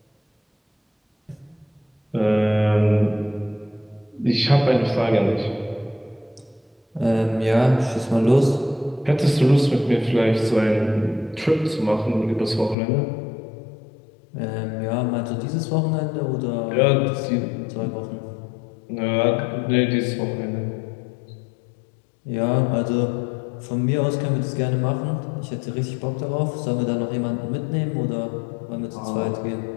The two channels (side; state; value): right; drops out; at 12.8 s